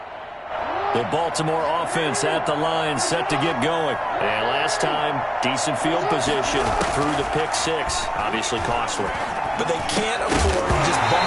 The Baltimore offense at the line, set to get going. And last time, decent field position through the pick six. Obviously costly. But they can't afford to just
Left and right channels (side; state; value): both; identical; correlation 1.00